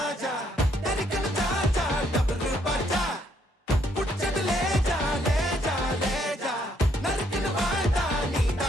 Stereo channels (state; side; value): normal; both; correlation 0.70